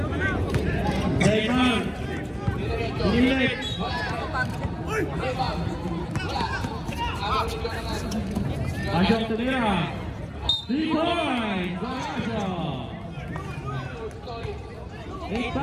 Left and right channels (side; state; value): both; identical; correlation 1.00